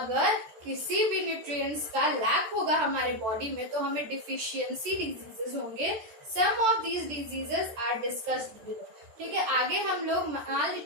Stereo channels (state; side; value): late; left; 13 ms